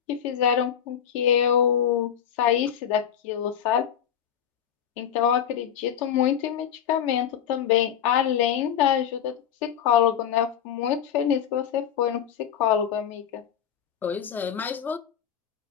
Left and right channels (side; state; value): right; quieter; 9.2 dB